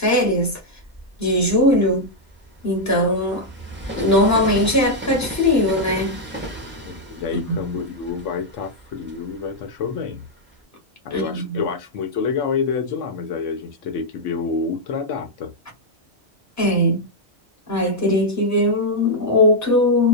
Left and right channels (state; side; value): normal; both; correlation -0.03